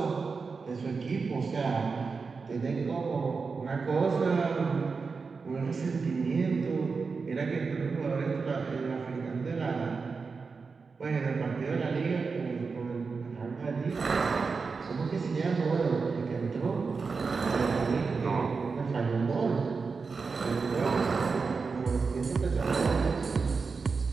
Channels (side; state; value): left; quieter; 4.8 dB